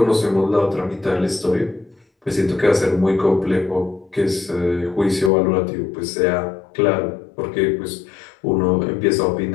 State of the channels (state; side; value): drops out; right; at 5.3 s